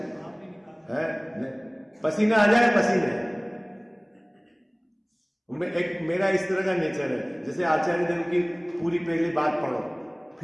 है? पसीना आ जाए पसीने। मेरा इस तरह का नेचर है, जैसे आचार्य देव की पूरी पहली बात पढ़ो,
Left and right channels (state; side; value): identical; both; correlation 1.00